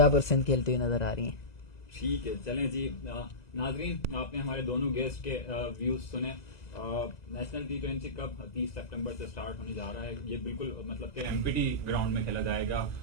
और सिंध खेलती हुई नजर आ रही हैं। ठीक है, चलें जी। नाजरीन, आपने हमारे दोनों गेस्ट के व्यूज सुने। नेशनल टी20 कप 30 सितंबर से स्टार्ट होने जा रहा है। ये बिल्कुल मतलब कि एमपीटी ग्राउंड में खेला जाएगा।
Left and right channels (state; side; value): late; right; 2.0 ms